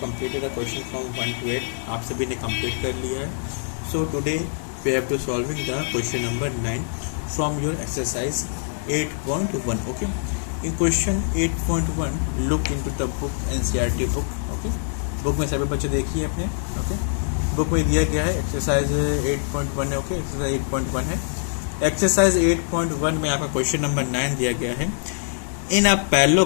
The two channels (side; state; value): right; silent; 63 dB below the other